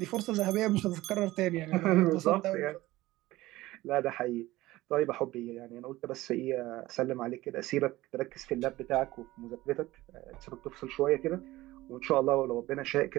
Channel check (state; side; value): quieter; left; 17.8 dB